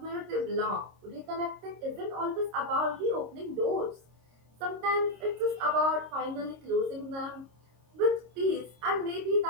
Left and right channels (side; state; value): left; late; 26 ms